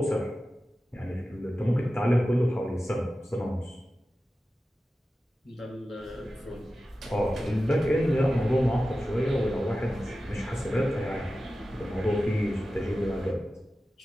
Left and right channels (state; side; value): normal; both; correlation 0.94